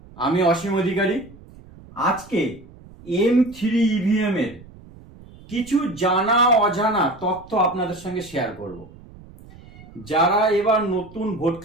আমি অসীম অধিকারী। আজকে M3 ইভিএম এর কিছু জানা অজানা তথ্য আপনাদের সঙ্গে শেয়ার করব। যারা এবার নতুন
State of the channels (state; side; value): noise; right; rumble, 21 dB below the sound